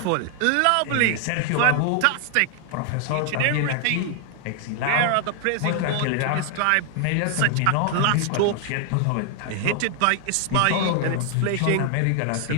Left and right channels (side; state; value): both; different; correlation 0.00